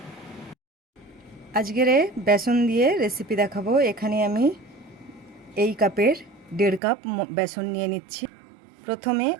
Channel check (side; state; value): left; drops out; at 6.8 s